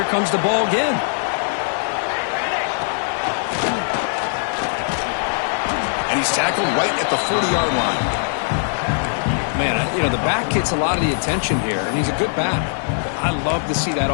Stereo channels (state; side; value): silent; right; digital silence